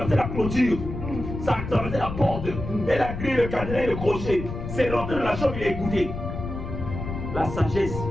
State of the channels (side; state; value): left; noise; rumble, 7 dB below the sound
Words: la clôture. Ça a traversé la porte. Et la grille, le cadenas et le crochet. C'est rentré dans la chambre, il a écouté. La sagesse,